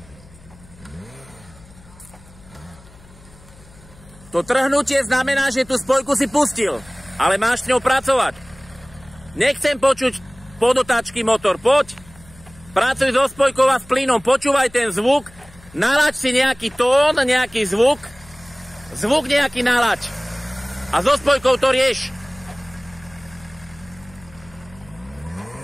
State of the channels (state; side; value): noise; left; hum, 24 dB below the sound